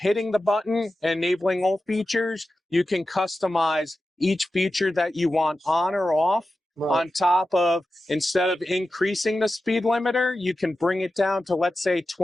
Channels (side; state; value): both; normal; correlation 0.93